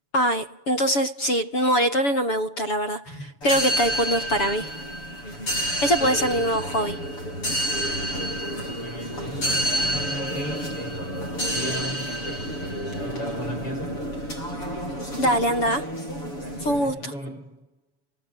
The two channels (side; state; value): right; late; 7.0 ms